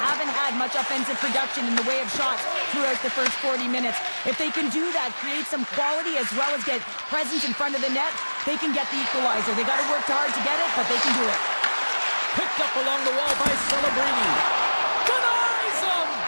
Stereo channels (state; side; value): inverted; both; correlation -1.00